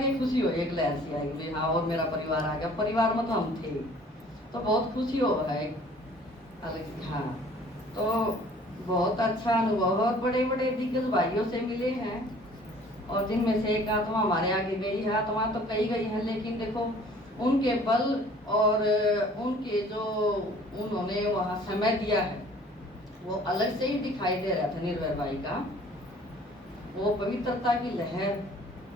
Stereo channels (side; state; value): both; normal; correlation 0.52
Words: ही खुशी हो एक लहर सी आई कि हाँ और मेरा परिवार आ गया। परिवार में तो हम थे तो बहुत खुशी हो रहा है अलग हाँ। तो बहुत अच्छा अनुभव और बड़े बड़े दिग्गज भाइयों से मिले हैं और जिनमें से एक आत्मा हमारे आगे गई है। आत्मा तो कई गई है लेकिन देखो उनके बल और उनके जो उन्होंने वहाँ समय दिया है वो अलग से ही दिखाई दे रहा था। निर्भय भाई का वो पवित्रता की लहर